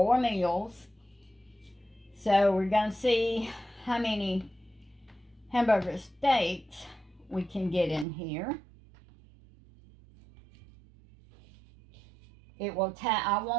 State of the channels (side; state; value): left; drops out; at 8.1 s